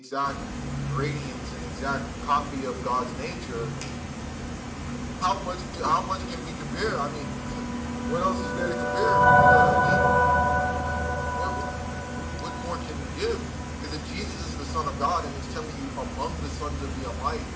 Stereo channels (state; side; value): identical; both; correlation 1.00